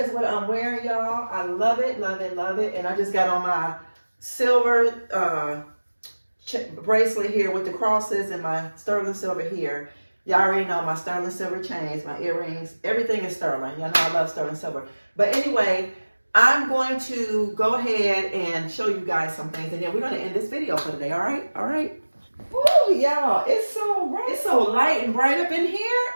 is what I'm wearing, y'all. I love it, love it, love it. And I just got on my silver bracelet here with the crosses and my sterling silver here. Y'all already know my sterling silver chains, my earrings, everything is sterling. Y'all know I love sterling silver. But anyway, I'm going to go ahead and show you guys some things, and then we're going to end this video for today, all right? All right? Woo, y'all, it's so light and bright up in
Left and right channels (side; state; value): both; inverted; correlation -1.00